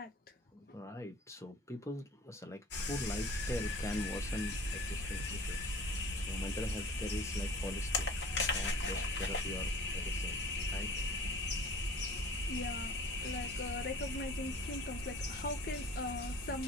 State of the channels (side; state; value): both; normal; correlation 0.45